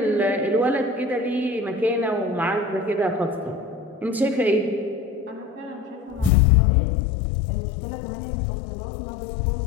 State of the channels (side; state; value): right; drops out; at 6.3 s